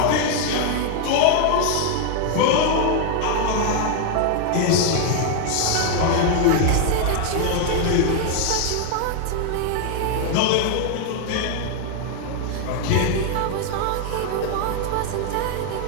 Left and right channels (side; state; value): both; different; correlation 0.00